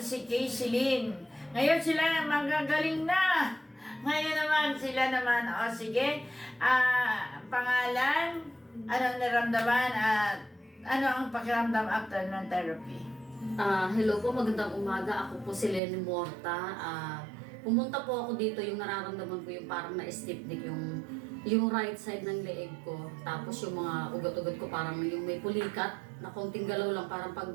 si Casey Lynn. Ngayon sila magagaling na. Ngayon naman, sila naman. O sige, pangalan, anong naramdaman at ano ang pakiramdam after ng therapy? Hello po, magandang umaga. Ako po si Lenny Morta. Pumunta po ako dito, yung nararamdaman ko yung parang na-stiff neck, yung right side ng leeg ko. Tapos yung mga ugat-ugat ko parang yung may pulikat na konting galaw lang, parang pag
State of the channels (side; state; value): left; drops out; at 15.8 s